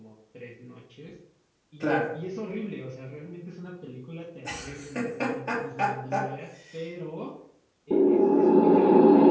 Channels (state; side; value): identical; both; correlation 1.00